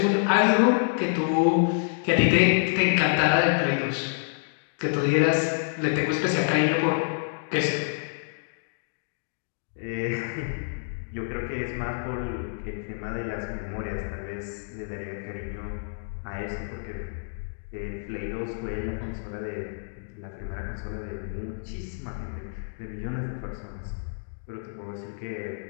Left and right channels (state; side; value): silent; right; digital silence